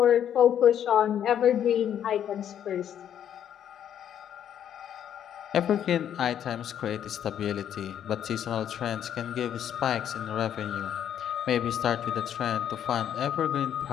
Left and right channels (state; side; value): quieter; right; 9.7 dB